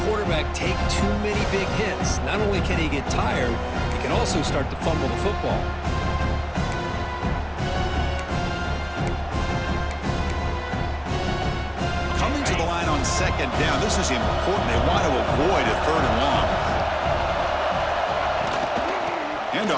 quarterback take too many big hits. Not only can he get tired, he can also start to fumble the football. On 2nd down. This is important. They want to avoid a 3rd and long.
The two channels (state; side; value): identical; both; correlation 1.00